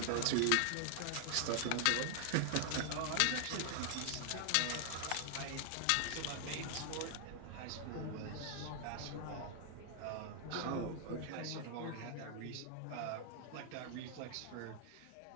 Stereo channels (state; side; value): different; both; correlation 0.00